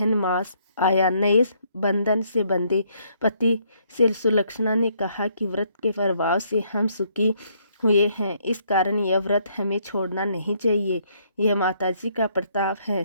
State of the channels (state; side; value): inverted; both; correlation -0.69